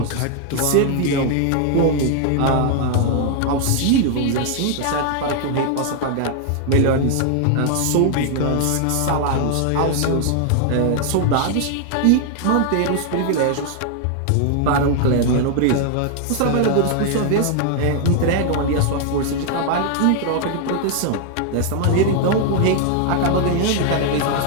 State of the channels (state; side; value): different; both; correlation 0.00